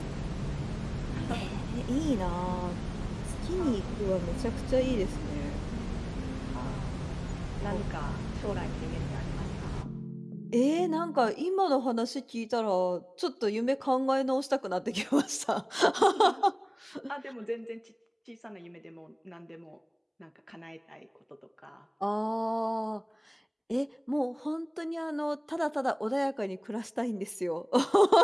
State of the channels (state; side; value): identical; both; correlation 1.00